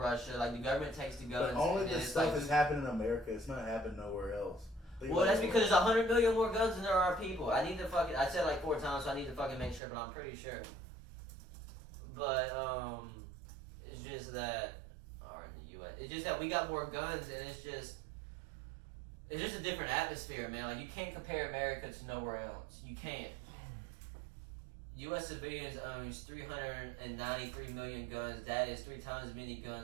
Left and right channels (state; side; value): drops out; left; at 9.8 s